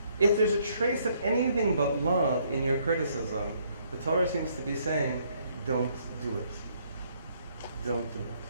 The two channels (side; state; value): both; inverted; correlation -0.68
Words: if there's a trace of anything but love in your criticism, the Torah seems to be saying, don't do it. Don't do it.